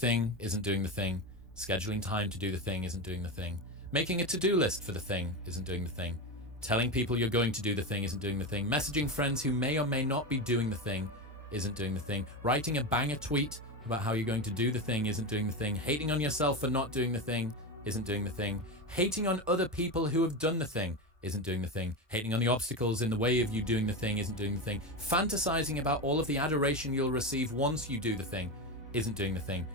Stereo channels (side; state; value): both; normal; correlation 0.18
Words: isn't doing the thing. Scheduling time to do the thing isn't doing the thing. Making a to-do list for the thing isn't doing the thing. Telling people you're going to do the thing isn't doing the thing. Messaging friends who may or may not be doing the thing isn't doing the thing. Writing a banger tweet about how you're going to do the thing isn't doing the thing. Hating on yourself for not doing the thing isn't doing the thing. Hating on other people who have done the thing isn't doing the thing. Hating on the obstacles in the way of you doing the thing isn't doing the thing. Fantasizing about all of the adoration you'll receive once you do the thing isn't doing the thing.